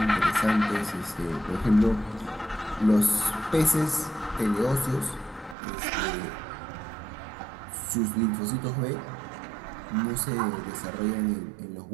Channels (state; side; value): drops out; left; at 5.6 s